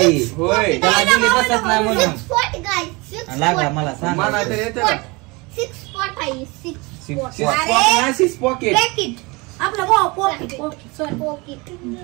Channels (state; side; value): quieter; left; 26.0 dB